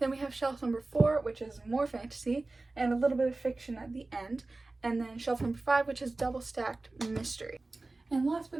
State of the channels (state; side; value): quieter; left; 3.2 dB